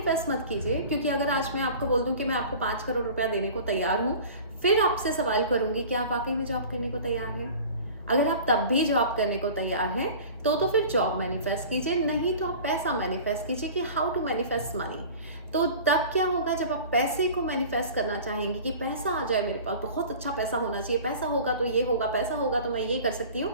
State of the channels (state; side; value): inverted; both; correlation -0.40